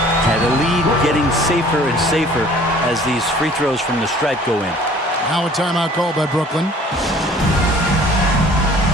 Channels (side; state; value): both; normal; correlation 0.52